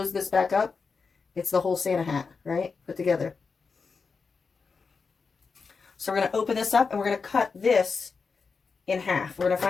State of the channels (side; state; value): right; quieter; 5.0 dB